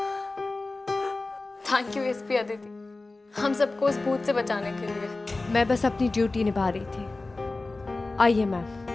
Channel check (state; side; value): quieter; right; 3.3 dB